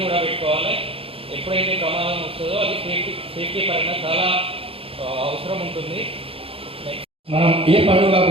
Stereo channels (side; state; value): left; late; 0.27 ms